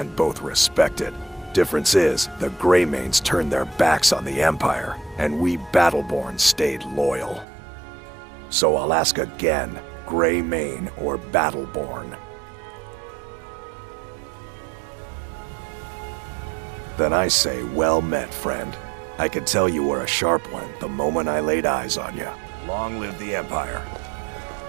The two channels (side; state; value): left; drops out; at 7.5 s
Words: both respected. Difference is, the Greymanes turned their backs on the Empire, and we Battleborn stayed loyal. So I'll ask again, Greymane or Battleborn? Then I say, well met, friend. I could tell you were a sharp one the moment I laid eyes on you. Long live the Empire.